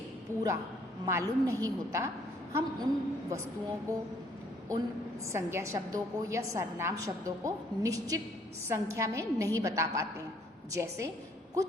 पूरा मालूम नहीं होता, हम उन वस्तुओं को, उन संज्ञा शब्दों को या सर्वनाम शब्दों को निश्चित संख्या में नहीं बता पाते हैं। जैसे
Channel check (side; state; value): both; normal; correlation 0.63